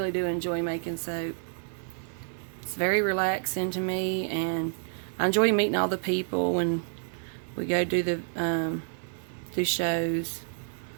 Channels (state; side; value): silent; left; digital silence